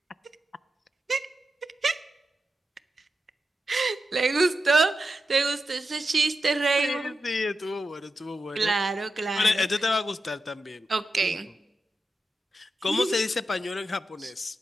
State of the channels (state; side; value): normal; both; correlation 0.89